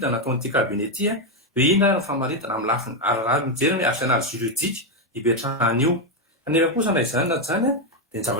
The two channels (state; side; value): normal; both; correlation 0.05